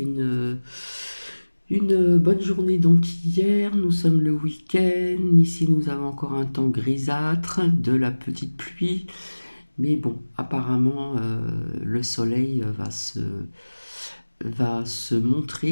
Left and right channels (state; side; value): inverted; both; correlation -1.00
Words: une bonne journée donc hier, nous sommes le week-end, ici nous avons encore un temps grisâtre, de la petite pluie, mais bon, apparemment le soleil va se